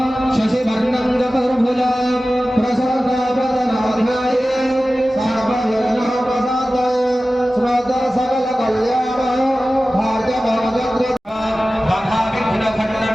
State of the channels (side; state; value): both; normal; correlation 0.96